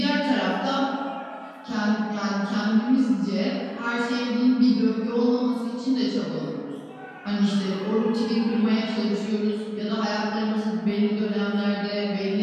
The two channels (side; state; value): both; identical; correlation 1.00